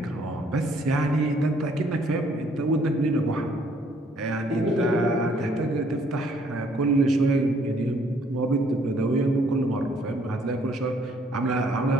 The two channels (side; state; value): both; normal; correlation 0.64